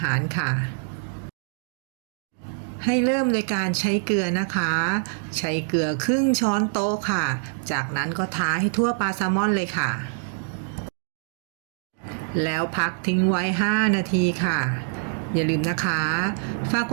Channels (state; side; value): silent; left; digital silence